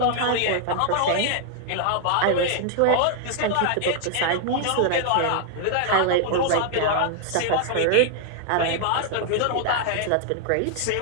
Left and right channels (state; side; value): different; both; correlation 0.00